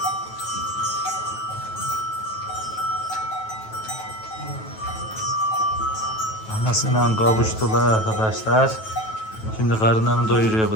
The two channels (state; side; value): late; right; 9.2 ms